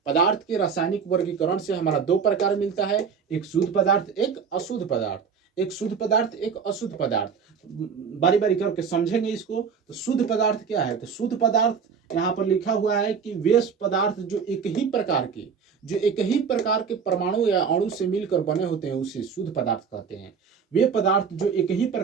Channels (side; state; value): left; quieter; 6.4 dB